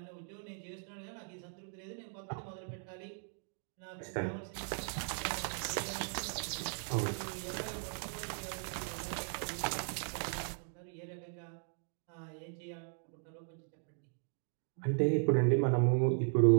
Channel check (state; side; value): silent; left; 53 dB below the other